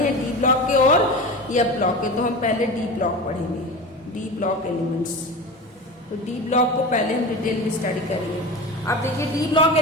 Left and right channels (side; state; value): both; normal; correlation 0.29